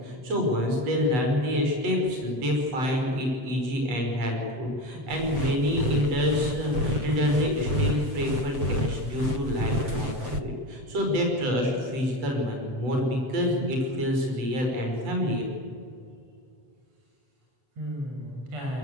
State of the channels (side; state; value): left; late; 7.7 ms